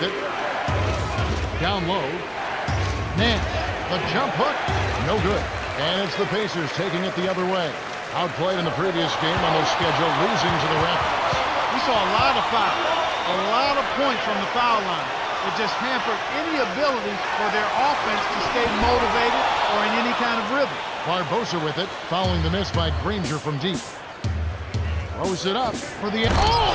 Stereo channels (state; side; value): identical; both; correlation 1.00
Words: it. Down low. Nash. The jump hook. No good. And it's the Pacers taking it the other way. Outplayed in the previous game on their schedule, losing to the Raptors. We saw a lot of fouls, a lot of points from the foul line. It just hampered any ability for their offense to stay motivated or in any kind of rhythm. Barbosa with it, following the miss by Granger from deep. Throws it up for the...